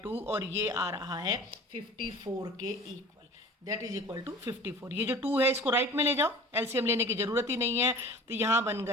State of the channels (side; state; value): both; normal; correlation 0.41